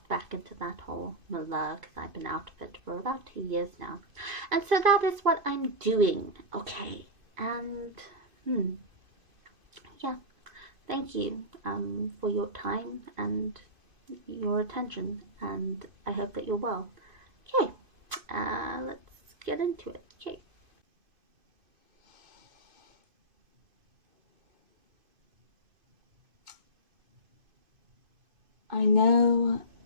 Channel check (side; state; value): left; late; 2.5 ms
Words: back into that whole milieu, because I've been out of it for about 2 years now. And so that is what I'm doing, okay? And, yeah, thank you for your time and your attention, and I hope that you're well. Okay, let's get into it. Okay. I know